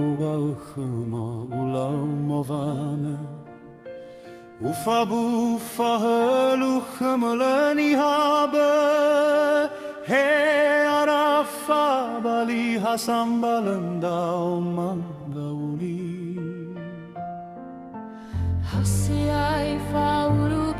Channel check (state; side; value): identical; both; correlation 1.00